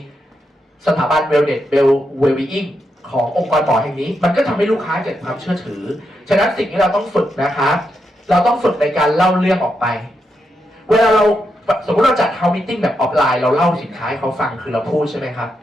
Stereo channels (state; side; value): normal; both; correlation 0.83